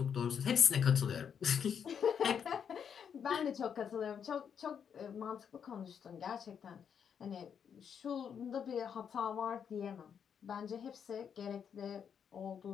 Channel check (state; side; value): quieter; right; 7.6 dB